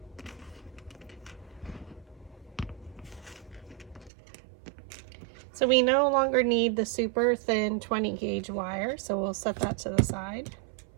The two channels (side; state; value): left; drops out; at 4.1 s